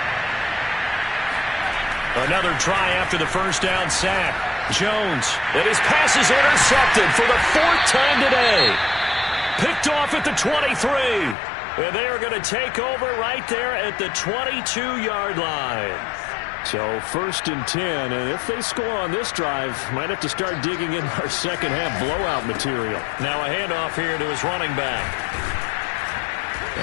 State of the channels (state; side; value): drops out; right; at 11.4 s